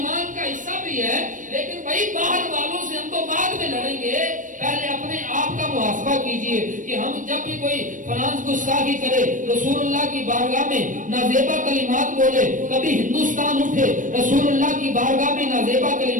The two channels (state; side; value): late; left; 0.38 ms